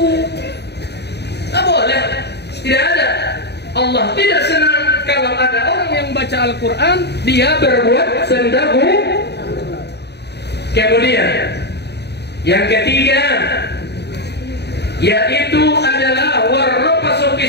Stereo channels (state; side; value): late; right; 0.49 ms